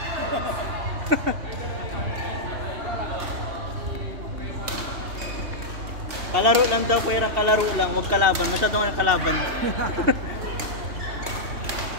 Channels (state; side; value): late; left; 2.7 ms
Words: Kalaro lang daw, pero kalaro lang, huwag kalaban. Masyadong ang kalaban.